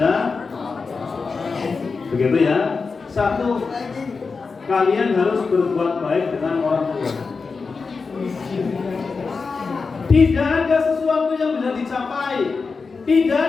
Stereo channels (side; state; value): right; quieter; 4.6 dB